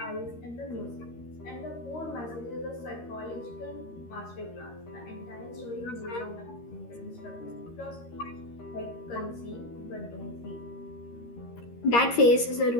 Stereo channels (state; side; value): late; right; 13 ms